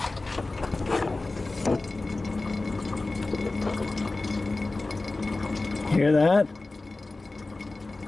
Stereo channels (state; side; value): quieter; right; 3.2 dB